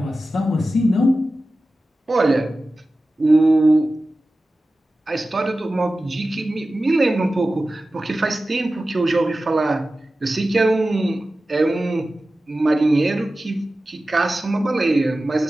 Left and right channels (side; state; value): both; normal; correlation 0.95